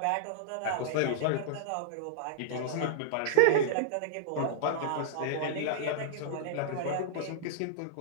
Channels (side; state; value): both; different; correlation -0.01